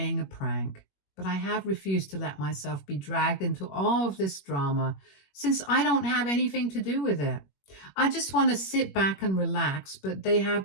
a prank. But I have refused to let myself be dragged into all of this drama, since I don't have anything to do with it. I just want to sit back and relax, but they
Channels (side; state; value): right; late; 21 ms